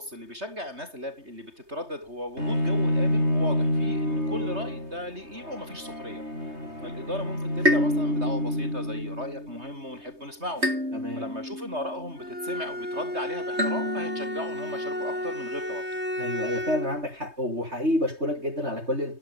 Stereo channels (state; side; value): late; left; 3.2 ms